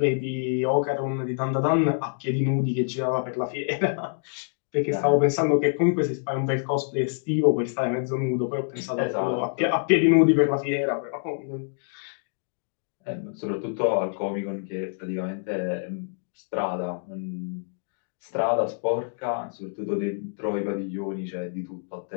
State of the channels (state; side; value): silent; right; digital silence